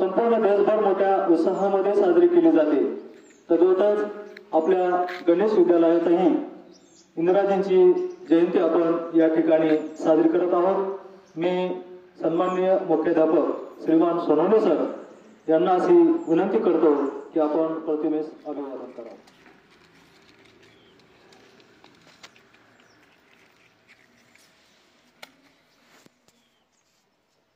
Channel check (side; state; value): both; identical; correlation 1.00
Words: देशभर मोठ्या उत्साहामध्ये साजरी केली जाते। तद्वतच आपल्या गणेश विद्यालयातही इंदिराजींची जयंती आपण या ठिकाणी साजरी करत आहोत। मी सन्माननीय मुख्याध्यापक श्रीमान सोनवणे सर यांना अशी विनंती करतो की आपण प्रतिमेस अभिवादन करावे।